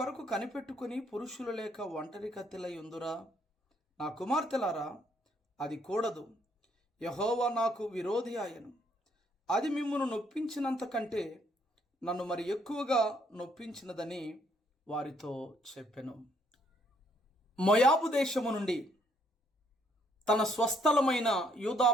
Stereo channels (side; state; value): both; normal; correlation 0.68